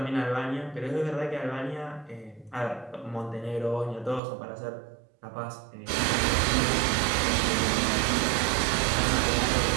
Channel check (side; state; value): left; drops out; at 4.2 s